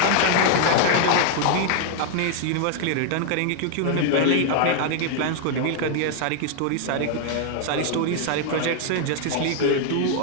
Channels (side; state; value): both; different; correlation 0.00